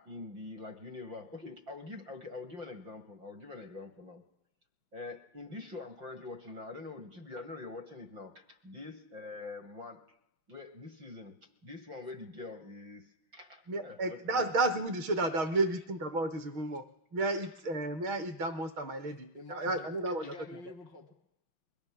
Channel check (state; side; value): late; left; 6.3 ms